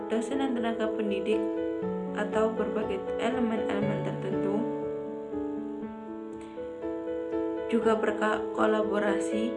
dosen dan tenaga pendidik atau berbagai elemen-elemen tertentu juga berkolaborasi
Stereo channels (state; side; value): identical; both; correlation 1.00